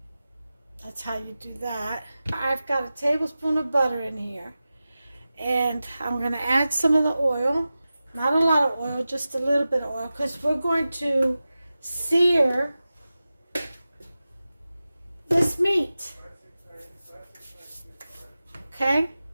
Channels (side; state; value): both; inverted; correlation -0.95